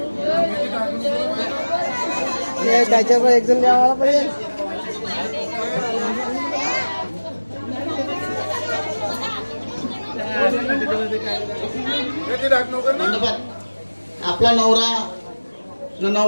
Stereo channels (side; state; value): both; inverted; correlation -1.00